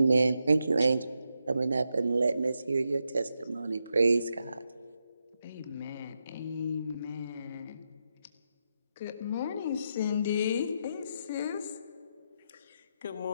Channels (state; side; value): inverted; both; correlation -0.85